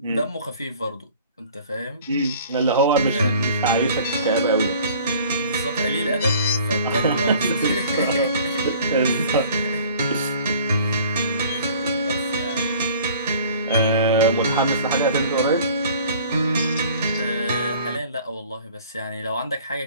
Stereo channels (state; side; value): inverted; both; correlation -0.50